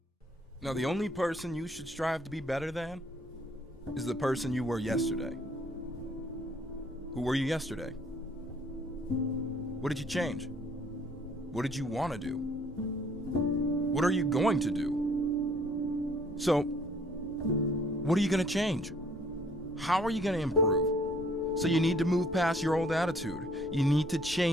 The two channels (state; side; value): normal; both; correlation 0.60